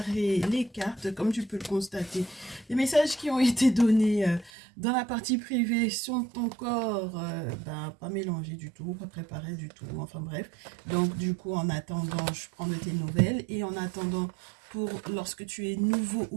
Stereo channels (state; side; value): drops out; left; at 4.5 s